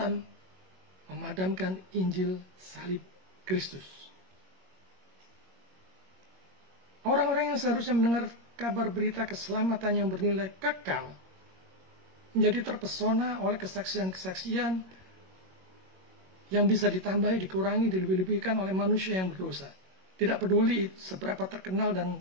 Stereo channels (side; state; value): left; late; 21 ms